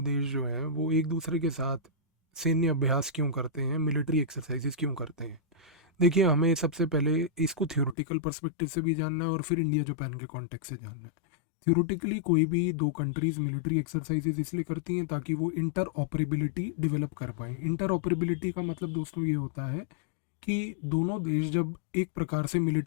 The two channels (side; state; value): right; drops out; at 8.0 s